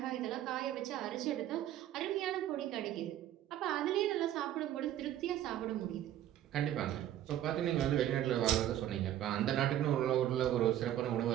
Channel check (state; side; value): quieter; left; 12.2 dB